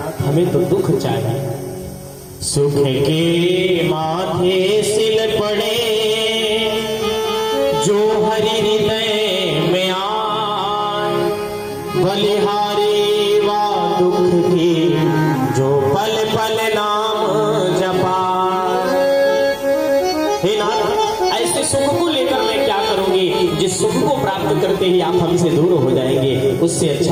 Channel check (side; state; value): both; identical; correlation 1.00